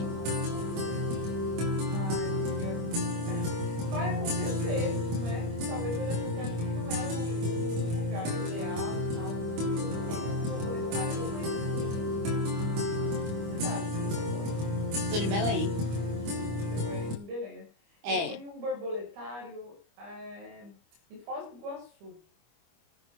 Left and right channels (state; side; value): late; left; 25 ms